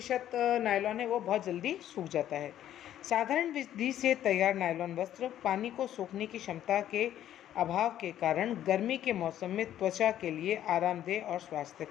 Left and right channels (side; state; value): right; quieter; 11.6 dB